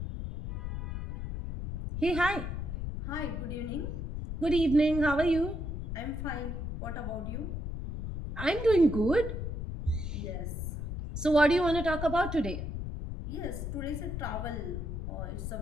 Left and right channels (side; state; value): left; noise; rumble, 5 dB below the sound